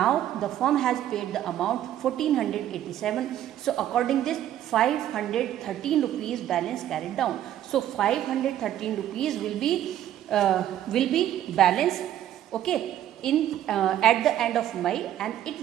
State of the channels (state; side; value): quieter; left; 11.8 dB